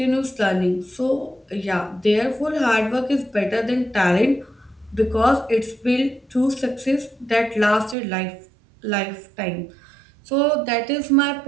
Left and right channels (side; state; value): left; drops out; at 8.0 s